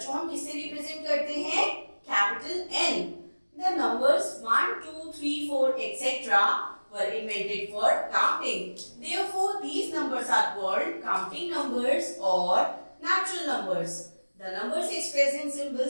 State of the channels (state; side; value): inverted; both; correlation -1.00